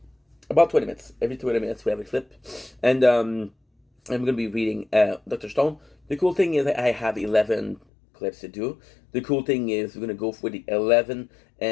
About 20 minutes. Every 20 minutes we have a clip. And I'm going to be reading Dr. Stone. The cool thing is I have 11 clips to do. The cool thing is we're going to go for the 11,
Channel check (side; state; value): right; drops out; at 7.8 s